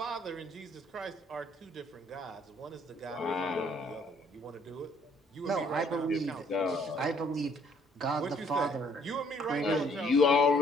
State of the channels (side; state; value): both; normal; correlation 0.63